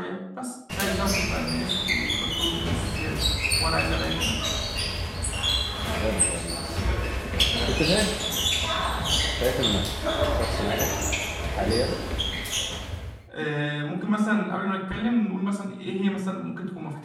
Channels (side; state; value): both; identical; correlation 1.00